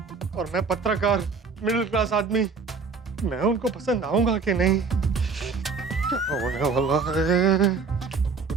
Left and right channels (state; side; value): quieter; left; 4.9 dB